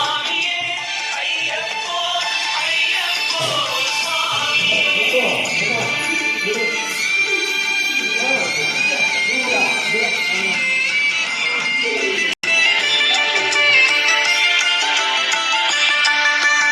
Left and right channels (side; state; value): both; identical; correlation 1.00